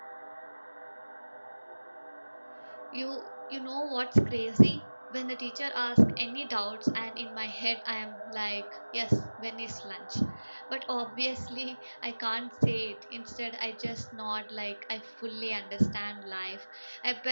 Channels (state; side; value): inverted; both; correlation -1.00